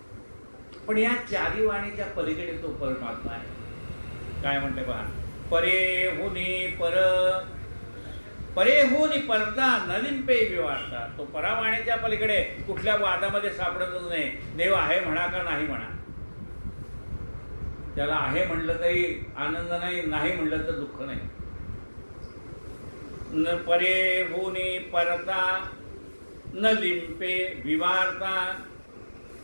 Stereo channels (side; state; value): both; inverted; correlation -1.00